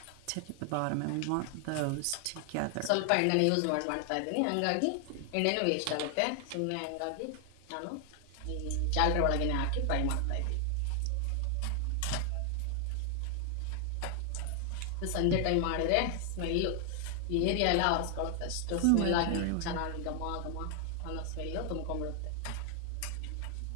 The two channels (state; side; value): different; both; correlation 0.00